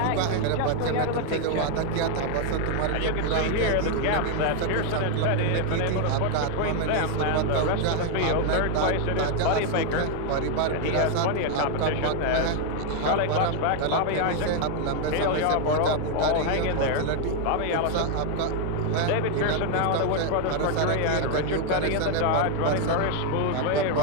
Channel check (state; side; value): different; both; correlation 0.00